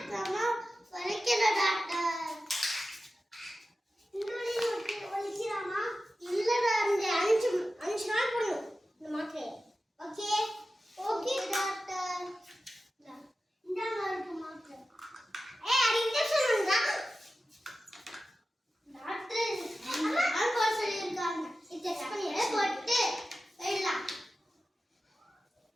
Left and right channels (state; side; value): normal; both; correlation 0.93